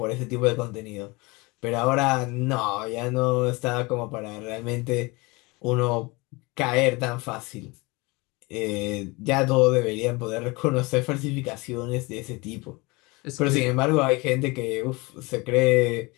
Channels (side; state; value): right; quieter; 25.1 dB